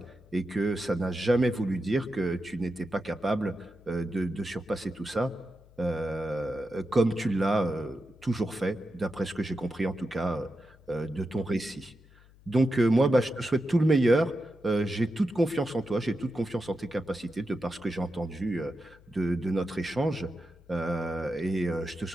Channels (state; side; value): noise; left; hum, 26 dB below the sound